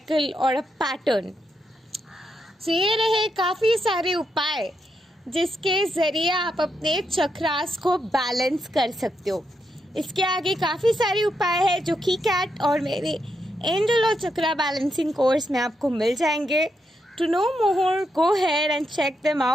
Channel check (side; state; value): both; normal; correlation 0.82